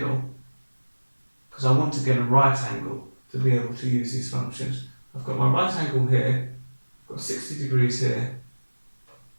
because I want to get a right angle to be able to use these functions, I've got my right angle here, I've got 60 degrees here,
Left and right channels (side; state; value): both; inverted; correlation -1.00